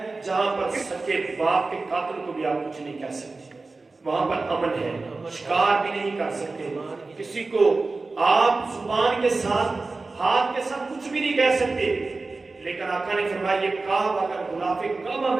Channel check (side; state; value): left; quieter; 3.6 dB